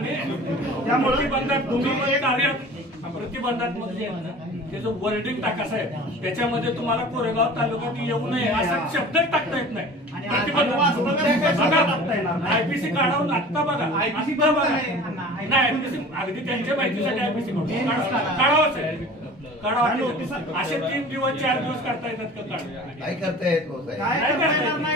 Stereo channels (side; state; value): both; normal; correlation 0.41